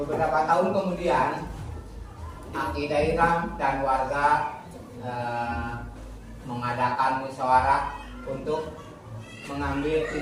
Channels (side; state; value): both; identical; correlation 1.00